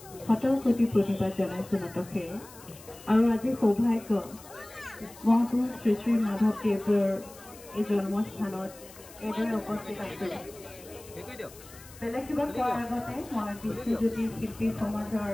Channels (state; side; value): noise; left; hiss, 20 dB below the sound